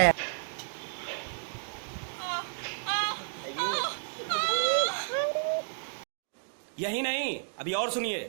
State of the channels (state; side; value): silent; left; digital silence